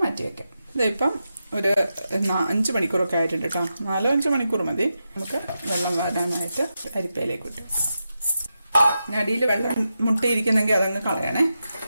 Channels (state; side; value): inverted; both; correlation -0.88